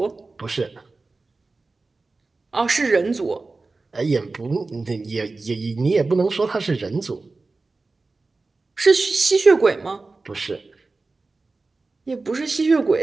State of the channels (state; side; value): quieter; left; 3.6 dB